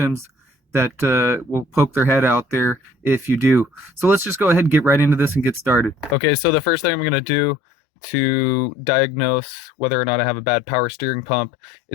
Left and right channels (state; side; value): drops out; right; at 7.0 s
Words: that will poke their head out there if you do. So let's just go ahead and get right into this and get started. Okay, so the first thing I'm going to do to diagnose whether or not I have a bad power steering pump